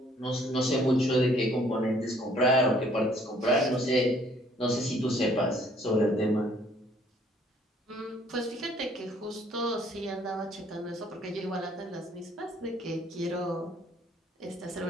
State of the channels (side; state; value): both; normal; correlation 0.61